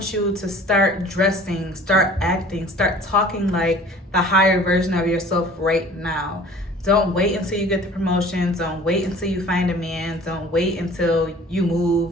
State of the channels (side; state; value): both; normal; correlation 0.48